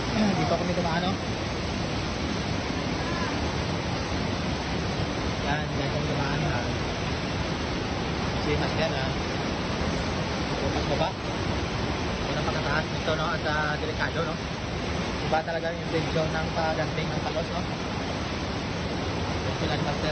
dito kami tumaan, no? Yan kami tumaan na si mas yan, bukas baba yun ang pagkataas nito, no? At delikado, no? Iba talaga yung intensyon ng pagdating ng palos, no? Yung sila ni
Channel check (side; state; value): both; identical; correlation 1.00